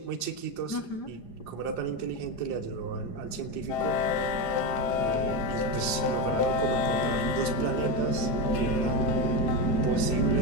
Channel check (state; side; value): late; right; 4.9 ms